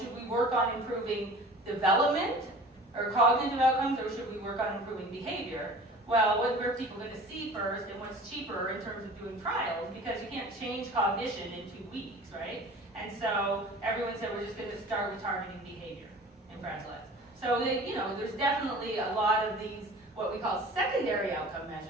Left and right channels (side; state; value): both; normal; correlation 0.43